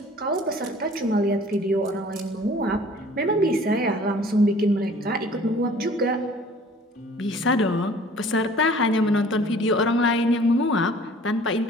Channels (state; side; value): normal; both; correlation 0.50